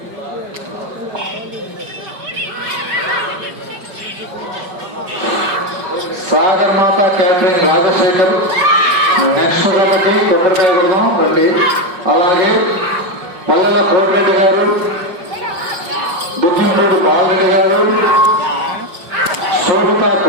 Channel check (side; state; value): left; late; 5.2 ms